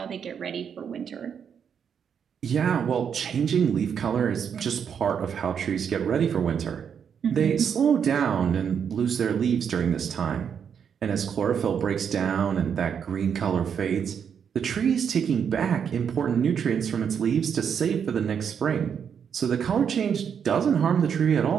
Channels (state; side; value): quieter; left; 7.5 dB